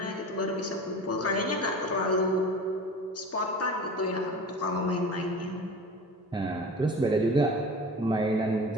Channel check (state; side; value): normal; both; correlation 0.36